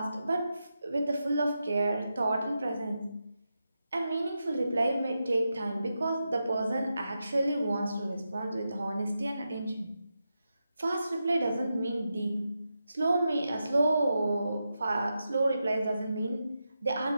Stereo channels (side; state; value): both; inverted; correlation -0.88